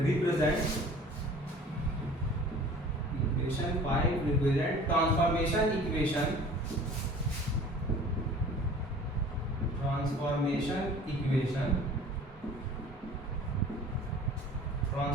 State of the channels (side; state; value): both; normal; correlation 0.46